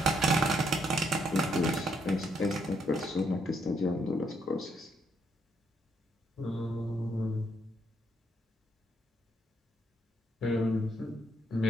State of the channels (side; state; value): both; normal; correlation 0.74